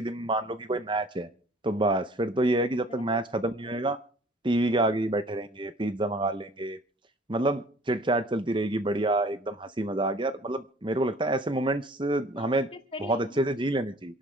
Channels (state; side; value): normal; both; correlation 0.51